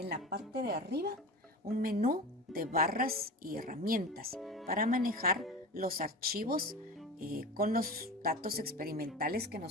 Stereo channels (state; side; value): normal; both; correlation 0.30